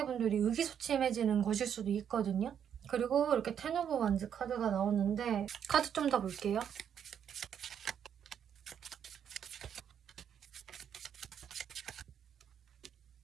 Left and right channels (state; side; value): quieter; left; 8.6 dB